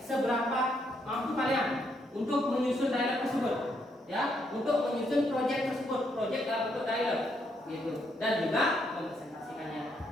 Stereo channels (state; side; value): normal; both; correlation 0.75